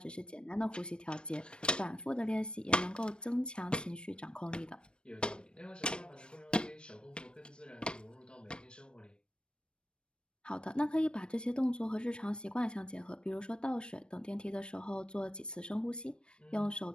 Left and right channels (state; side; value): late; right; 0.054 ms